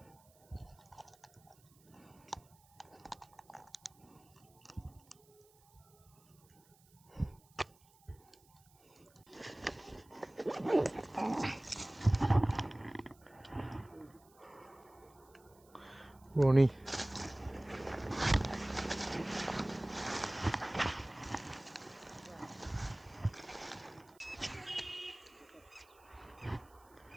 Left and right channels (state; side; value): noise; right; hiss, 29 dB below the sound